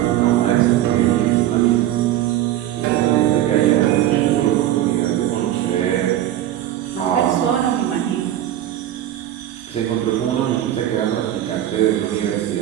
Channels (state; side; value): quieter; left; 12.6 dB